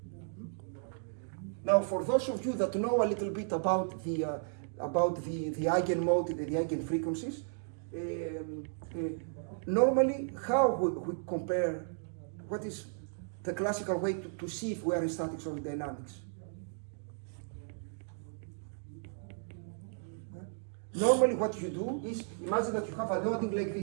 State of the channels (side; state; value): left; silent; digital silence